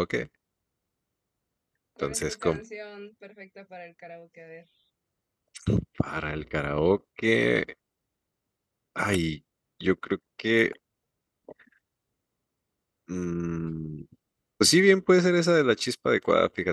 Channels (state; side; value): identical; both; correlation 1.00